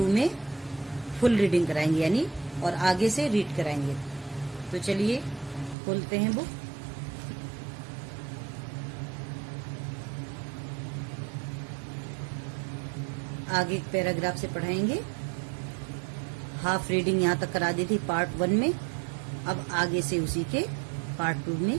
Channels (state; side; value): drops out; left; at 5.8 s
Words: में फुल रीडिंग कराएंगे, यानी और आगे से रीड कराएंगे। तो चलिए खोलते हैं बुक। आगे एक पैराग्राफ से पढ़ाएंगे। हाफ रीडिंग यहाँ तक करा दी थी पार्ट 1 में। अब आगे से उसी के पार्ट 2